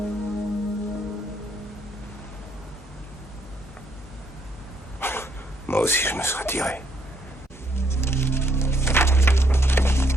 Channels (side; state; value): both; normal; correlation 0.71